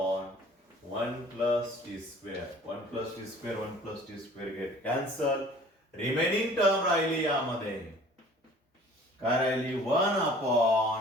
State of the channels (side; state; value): both; normal; correlation 0.49